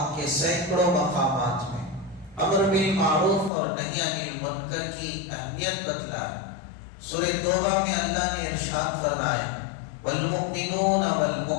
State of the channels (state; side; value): drops out; right; at 3.5 s